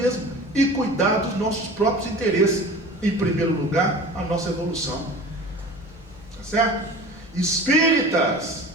e cuidar dos nossos próprios interesses. Em primeiro lugar, a nossa evolução. Tá certo? Espíritas,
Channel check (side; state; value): both; normal; correlation 0.38